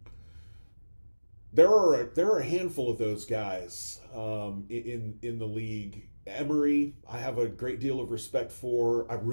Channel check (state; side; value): inverted; both; correlation -1.00